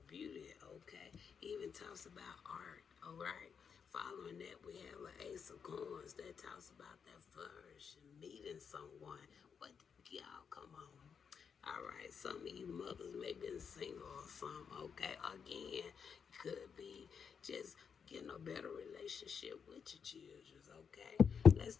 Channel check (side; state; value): right; quieter; 6.6 dB